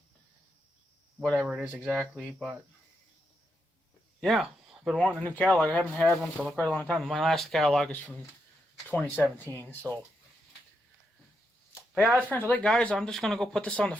whatever it is exactly. But yeah, I've been wanting a new catalog. I haven't had one for quite a long time. My last catalog is from 2017. So, but yeah, that's pretty much it, guys. I'm just gonna go put this on the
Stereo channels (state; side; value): normal; both; correlation 0.82